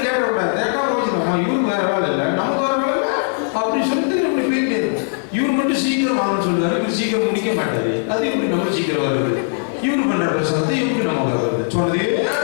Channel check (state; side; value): silent; right; 66 dB below the other